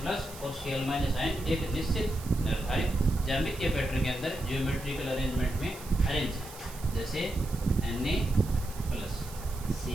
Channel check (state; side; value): noise; right; hiss, 16 dB below the sound